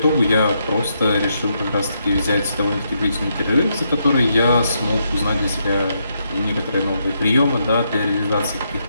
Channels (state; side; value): inverted; both; correlation -0.78